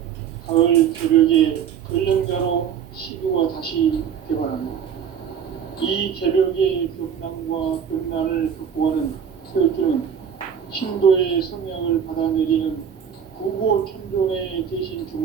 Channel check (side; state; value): left; quieter; 8.0 dB